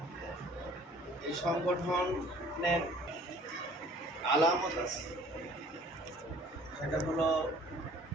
এই সংগঠনের আলামত আছে। সেটা হলো,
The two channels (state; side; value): normal; both; correlation 0.53